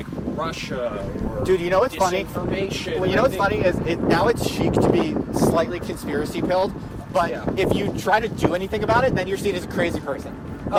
Russia or Dude, you know what's funny? disinformation. Well, you know what's funny is now it's chic to be slightly conspiracy pilled, but Yeah. if you try to do anything about it, then you're seen as a crazy person.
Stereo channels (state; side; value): identical; both; correlation 1.00